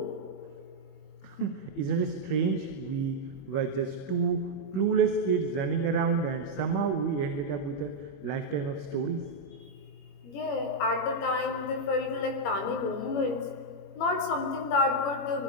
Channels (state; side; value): late; right; 21 ms